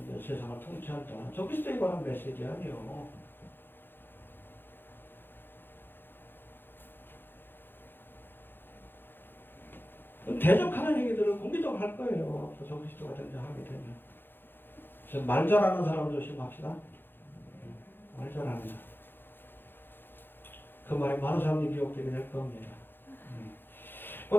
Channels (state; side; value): late; right; 0.10 ms